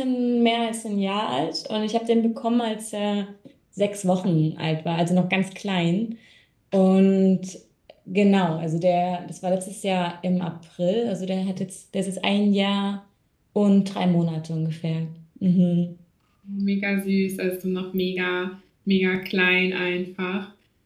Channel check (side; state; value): both; identical; correlation 1.00